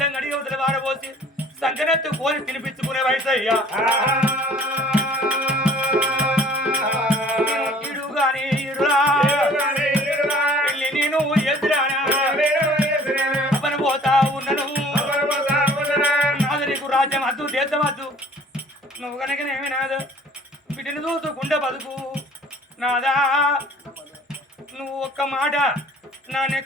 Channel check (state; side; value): normal; both; correlation 0.52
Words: కడిగి వదిలి పారబోసి సంకనెత్తు కోరి తినిపించుకునే వయసు అయ్యా. ఇడు గాని ఇడురా నువ్వు కనుకనేమి నాదా బిడ్డను చూసుకుంటే బతుకు నాదా నువ్వు ఒక్క మాట నా